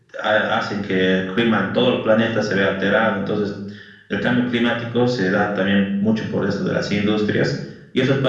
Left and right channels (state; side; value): identical; both; correlation 1.00